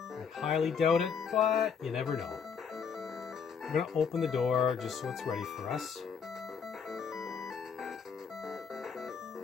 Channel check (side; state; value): right; quieter; 6.4 dB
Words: highly doubt it, but you never know. We're going to open the door just so it's ready for us.